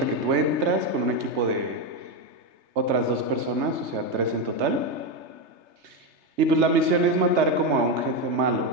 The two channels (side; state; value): left; late; 3.3 ms